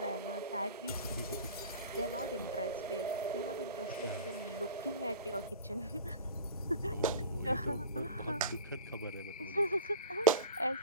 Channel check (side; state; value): both; inverted; correlation -0.38